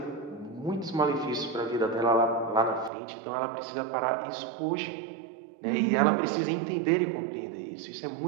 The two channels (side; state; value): left; drops out; at 2.9 s